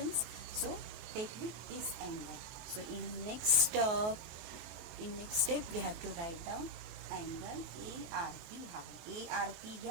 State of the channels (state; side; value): late; left; 24 ms